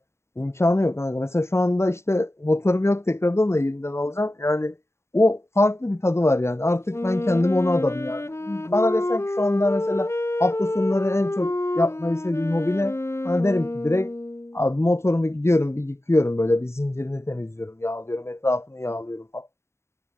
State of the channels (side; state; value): right; late; 0.13 ms